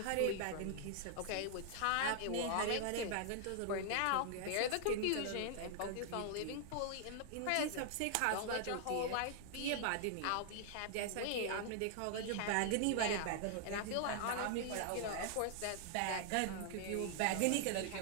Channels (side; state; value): both; different; correlation -0.01